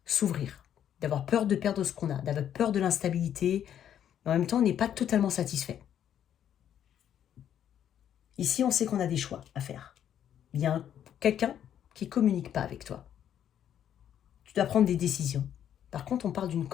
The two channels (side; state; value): right; quieter; 9.9 dB